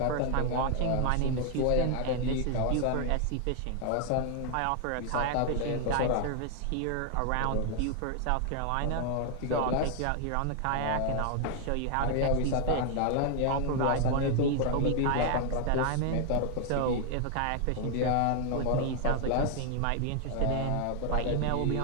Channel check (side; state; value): both; different; correlation 0.00